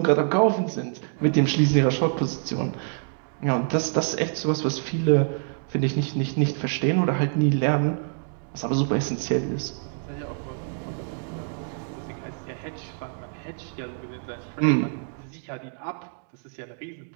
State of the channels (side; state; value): left; silent; 61 dB below the other